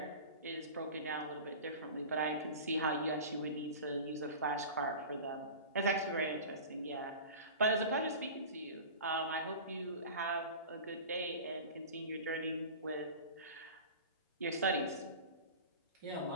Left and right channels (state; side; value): inverted; both; correlation -0.35